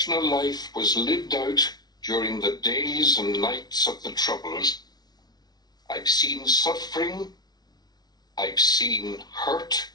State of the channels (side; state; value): right; late; 0.19 ms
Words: life was lived out during the days and nights of the Troubles. I've seen suffering, I've seen hurt,